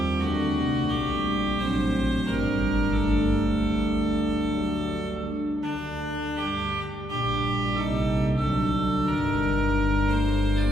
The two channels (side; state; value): both; normal; correlation 0.76